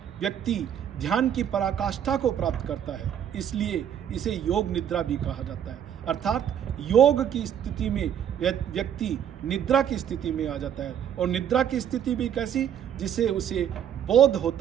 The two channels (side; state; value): left; quieter; 9.4 dB